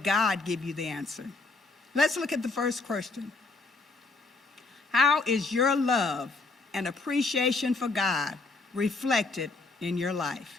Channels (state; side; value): quieter; right; 3.7 dB